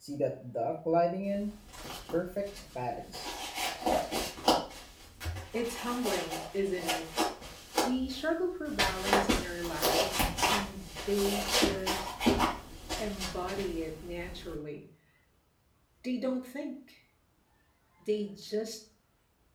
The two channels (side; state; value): both; identical; correlation 1.00